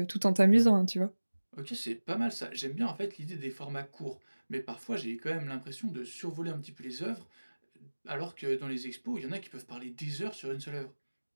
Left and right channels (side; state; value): both; inverted; correlation -1.00